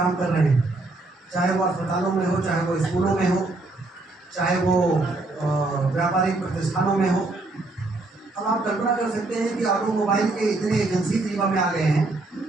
कर रहे हैं, चाहे वो अस्पतालों में हो, चाहे वो स्कूलों में हो, चाहे वो व्यापारिक प्रतिष्ठानों में हो। अब आप कल्पना कर सकते हैं कि ऑटोमोबाइल के इतने एजेंसी रीवा में आ गए हैं।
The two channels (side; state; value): left; quieter; 3.1 dB